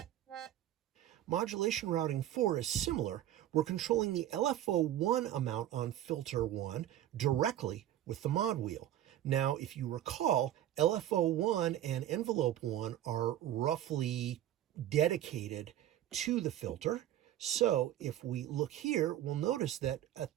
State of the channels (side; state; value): left; quieter; 12.4 dB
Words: Modulation routing 4 is similar. We're controlling the LFO1 amount on filter 1 directly with the mod wheel. Now, if you recall, LFO1 and envelope 1 are roughly dedicated to the filter. So if we look here, we'll notice that